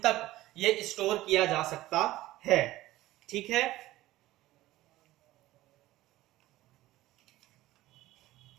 ये स्टोर किया जा सकता है। ठीक है,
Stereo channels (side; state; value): left; quieter; 16.6 dB